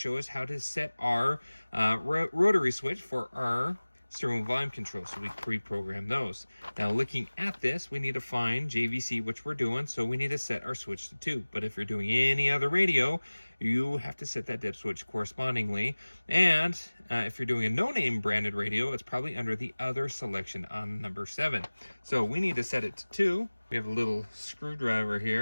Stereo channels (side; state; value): both; inverted; correlation -1.00